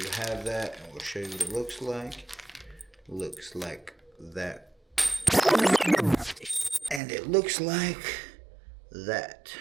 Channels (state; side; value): drops out; left; at 7.0 s